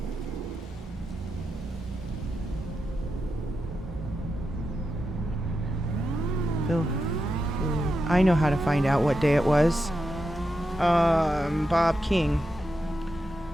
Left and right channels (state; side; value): normal; both; correlation 0.88